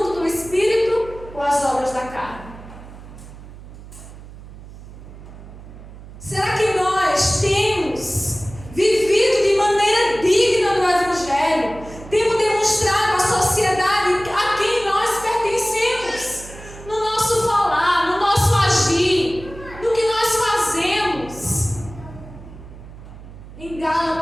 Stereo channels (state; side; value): noise; right; hum, 16 dB below the sound